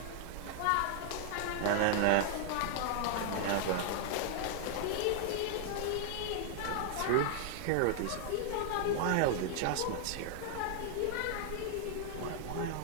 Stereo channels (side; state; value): both; different; correlation -0.01